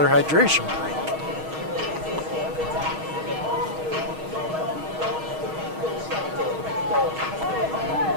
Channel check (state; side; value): late; left; 6.4 ms